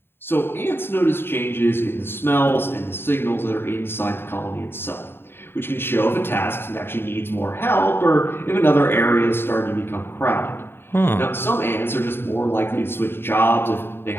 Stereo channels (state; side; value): late; right; 0.11 ms